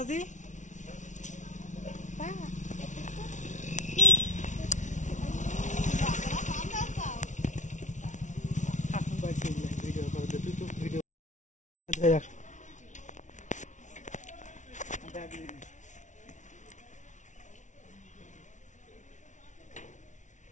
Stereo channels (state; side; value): late; right; 0.36 ms